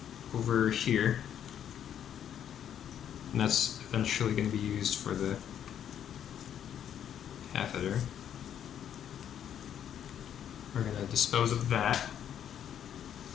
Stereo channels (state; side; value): quieter; right; 9.6 dB